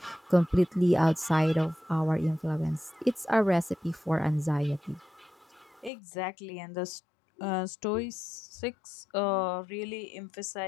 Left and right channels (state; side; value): drops out; right; at 5.9 s